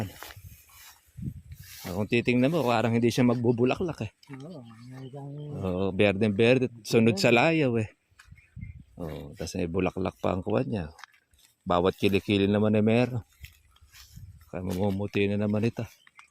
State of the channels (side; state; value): both; identical; correlation 1.00